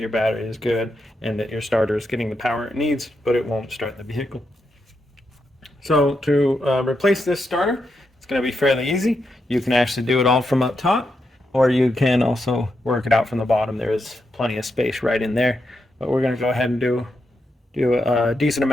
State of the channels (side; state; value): both; normal; correlation 0.84